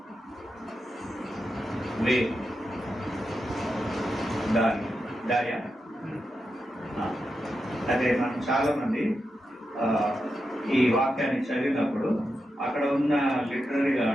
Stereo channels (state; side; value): normal; both; correlation 0.88